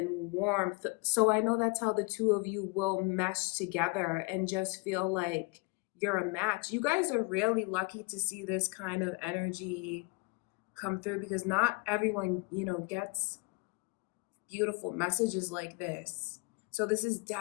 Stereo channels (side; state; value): right; quieter; 29.6 dB